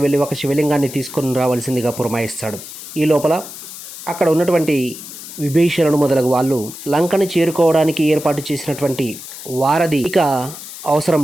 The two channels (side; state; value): left; noise; hiss, 12 dB below the sound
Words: వెళ్ళి ఒక శివలింగాన్ని తీసుకొని రావాల్సిందిగా పురమాయిస్తాడు. ఈ లోపల అక్కడ ఉన్నటువంటి విభీషణుడు మొదలగు వాళ్ళు లంకను చేరుకోవడానికి ఏర్పాటు చేసినటువంటి వారధి ఇక అవసరం